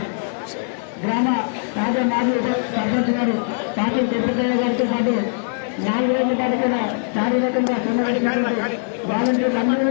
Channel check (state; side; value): silent; right; 65 dB below the other